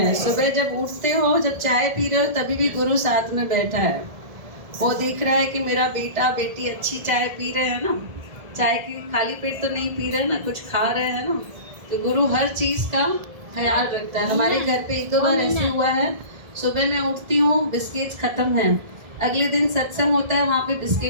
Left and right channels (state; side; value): late; left; 1.7 ms